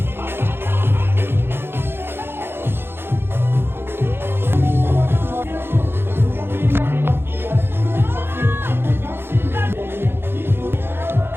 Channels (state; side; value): late; left; 0.11 ms